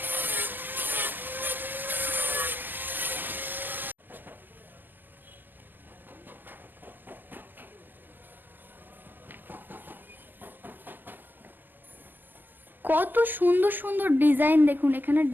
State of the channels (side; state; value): left; late; 0.088 ms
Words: কত সুন্দর সুন্দর ডিজাইন দেখুন, এখানে